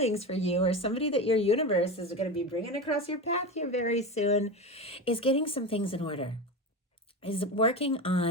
for you, or somebody that your universe is going to be bringing across your path here very soon, is getting some things in order, is working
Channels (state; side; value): normal; both; correlation 0.23